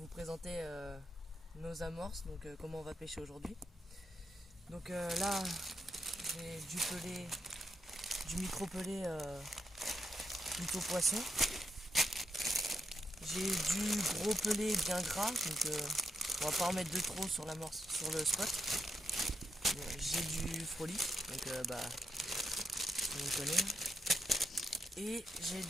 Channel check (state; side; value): normal; both; correlation 0.82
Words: présenter nos amorces, donc comment on va pêcher aujourd'hui. Donc là, j'ai du pelé, du micro-pelé plutôt poisson. J'ai du gros pelé bien gras, donc on va pas en mettre de trop sur l'amorce, sur le spot. J'ai du frolic, donc on le connaît. Et j'ai